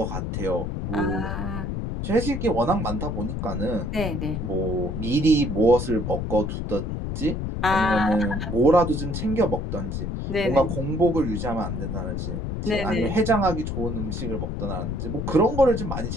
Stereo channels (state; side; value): noise; left; rumble, 3 dB below the sound